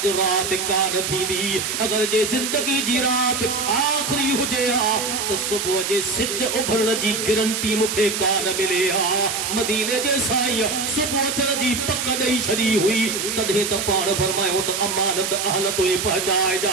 राति कान थींदी। अगरि जे ज़िंदगी जी राति आख़िरी हुजे हा त सुबुह जे सिज उभरण जी गारंटी मूंखे कान मिले हा। मदीने जे साईं सुबुह थियण जी पक ॾेई छॾी हुई, तॾहिं त पाण फरमायो त अमानत अहल तोए पहुचाइजा।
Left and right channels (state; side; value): noise; right; hiss, 2 dB below the sound